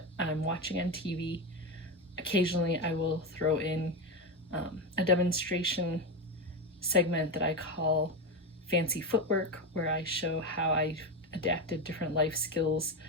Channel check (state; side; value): normal; both; correlation 0.15